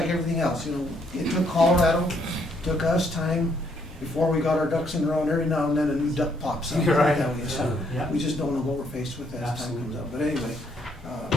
everything else, you know, it took Colorado, took us time before we got our ducks in a row, and every now and then a new duck pops up. You're right. So Yeah. we just don't know what we're faced with as time comes up. But anyway,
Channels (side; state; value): both; normal; correlation 0.70